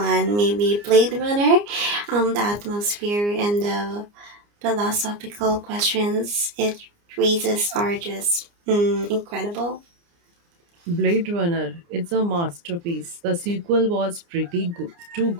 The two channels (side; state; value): left; late; 29 ms